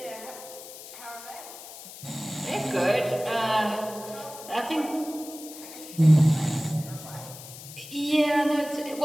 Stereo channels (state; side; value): noise; left; hiss, 14 dB below the sound